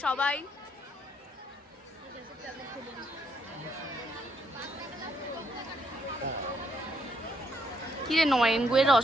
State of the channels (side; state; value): both; normal; correlation 0.74